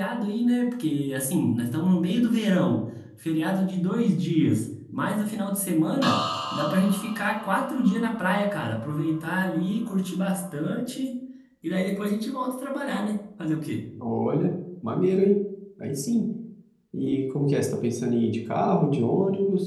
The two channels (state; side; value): identical; both; correlation 1.00